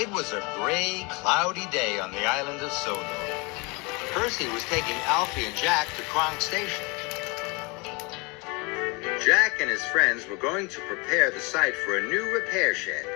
was a gray, cloudy day on the island of Sodor. Percy was taking Alfie and Jack to Kronk Station. Jack and his friends were going to prepare the site for a new repair shed.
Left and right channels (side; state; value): right; quieter; 28.5 dB